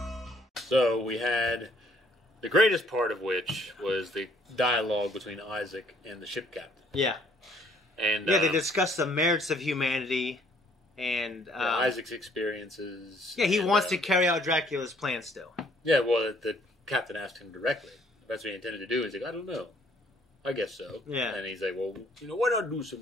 So, we had the greatest part of which was the dialogue between Isaac and the ship captain. Yeah. And they discussed the merits of humanity and... Isaac's experiences. Yeah, he wants to carry out Dracula's plan still. Yeah, well, the captain asked him directly. That's what he intended to do. He's like, I don't know. I guess so. Yeah. And he's like, well, why not do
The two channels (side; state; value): both; normal; correlation 0.62